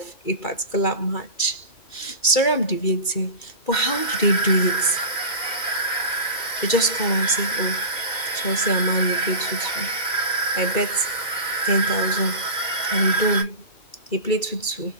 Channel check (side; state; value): right; late; 2.3 ms